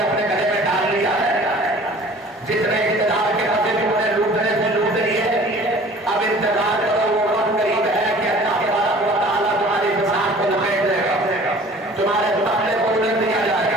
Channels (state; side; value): normal; both; correlation 0.48